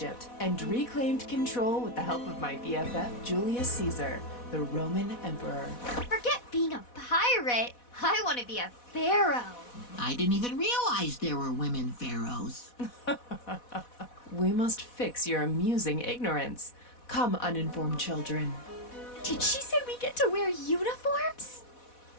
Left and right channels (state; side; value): late; right; 4.1 ms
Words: and reclaimed control with the help of my BFF Julius Caesar, the Roman emperor. Forget being a pirate. I want to be a pharaoh. I didn't even realize there were women pharaohs. We must fix your amusing ignorance. Come, uninformed children. Did she say we get to wear uniforms?